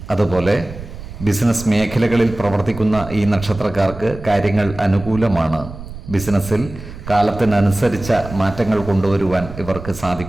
അതുപോലെ ബിസിനസ് മേഖലകളിൽ പ്രവർത്തിക്കുന്ന ഈ നക്ഷത്രക്കാർക്ക് കാര്യങ്ങൾ അനുകൂലമാണ്. ബിസിനസ്സിൽ കാലത്തിനനുസരിച്ച മാറ്റങ്ങൾ കൊണ്ടുവരുവാൻ ഇവർക്ക്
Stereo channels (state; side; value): noise; right; rumble, 13 dB below the sound